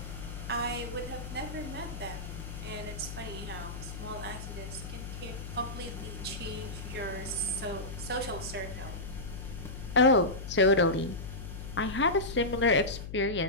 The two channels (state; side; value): noise; left; hum, 8 dB below the sound